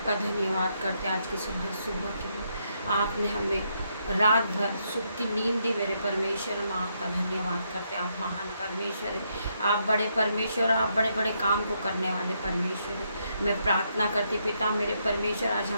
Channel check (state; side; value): inverted; both; correlation -0.77